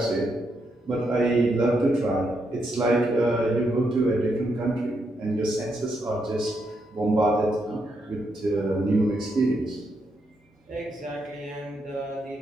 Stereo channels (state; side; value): normal; both; correlation 0.80